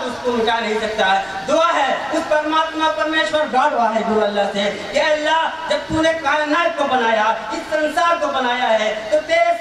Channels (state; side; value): identical; both; correlation 1.00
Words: اس کو مٹا نہیں سکتا ہے. دعا ہے اس پرماتما پرمیشور گاڈ واحد گرو اللہ سے کہ اللہ جب تو نے کائنات کو بنایا، اس سنسار کو بنایا ہے، تو تیرے